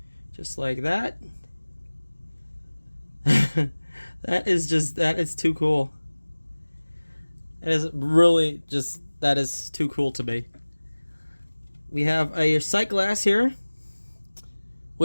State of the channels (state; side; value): inverted; both; correlation -1.00